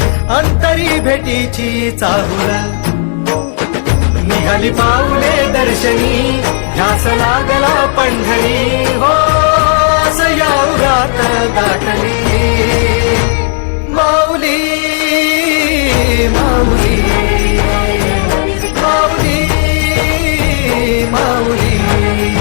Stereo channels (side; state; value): right; silent; 59 dB below the other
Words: अंतरी भेटीची चाहुल निघाली पाऊले दर्शनी ध्यास लागला पंढरी हो सयाउरात गाठली माऊली माऊली माऊली माऊली